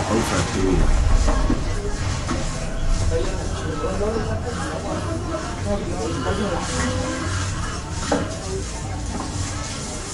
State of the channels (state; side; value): identical; both; correlation 1.00